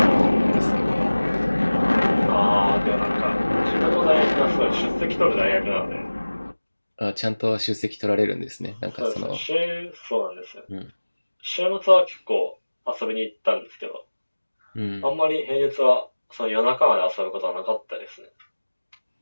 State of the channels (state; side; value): inverted; both; correlation -1.00